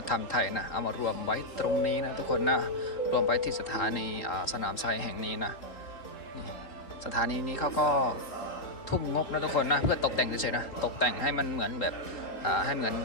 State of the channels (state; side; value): late; right; 4.0 ms